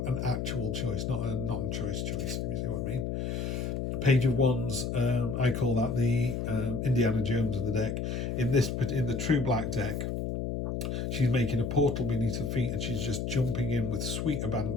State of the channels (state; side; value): noise; left; hum, 2 dB below the sound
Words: an actual choice, not a non-choice choice. You see what I mean? Page of Wands, I call that the Indiana Jones of the deck. In the True Black deck, she's making a portal beneath her feet and she's just jumping in with sweet